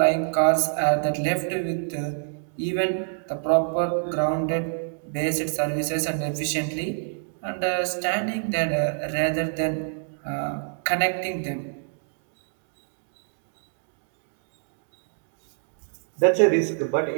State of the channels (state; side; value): silent; left; digital silence